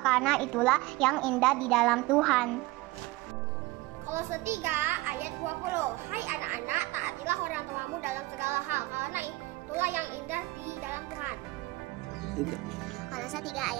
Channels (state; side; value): quieter; left; 20.6 dB